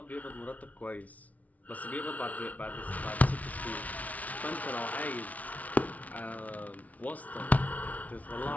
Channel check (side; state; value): right; late; 0.071 ms